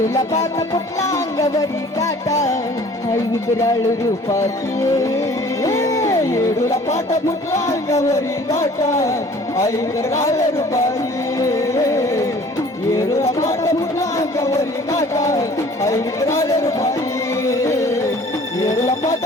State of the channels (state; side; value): normal; both; correlation 0.51